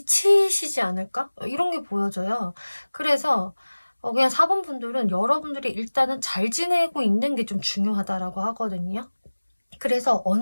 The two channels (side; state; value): both; inverted; correlation -1.00